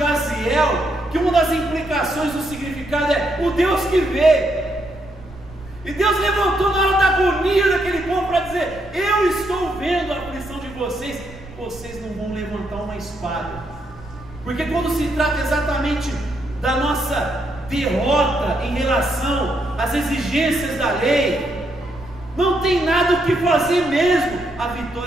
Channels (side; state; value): right; noise; rumble, 18 dB below the sound